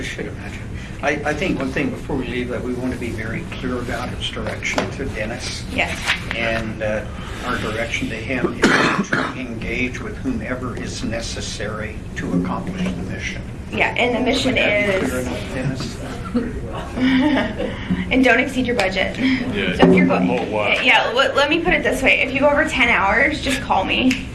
should imagine. I think one thing before we leave that we want to be very clear about is direction to Dennis. Yes. And our direction to him is to engage with whomever is necessary to accomplish the mission. Yeah, and the mission Would that be clear is, enough, Dennis? and don't exceed your budget. Yeah, So if you're going, oh, wow. yeah, let me put it this way. If you go over 10 hours, just call me.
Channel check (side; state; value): both; identical; correlation 1.00